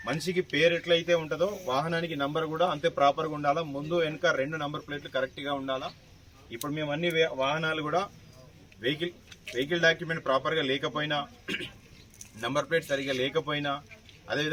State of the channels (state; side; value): identical; both; correlation 1.00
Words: మనిషికి పేరు ఎట్లయితే ఉంటుందో వాహనానికి నంబర్ కూడా అంతే ప్రాపర్గా ఉండాలా. ముందు వెనుక 2 నంబర్ ప్లేట్లు కరెక్ట్గా ఉండాలా. ఇప్పుడు మేము అన్ని వాహనాలు కూడా వెహికల్ డాక్యుమెంట్ ప్రాపర్గా లేకపోయినా, నంబర్ ప్లేట్ సరిగా లేకపోయినా,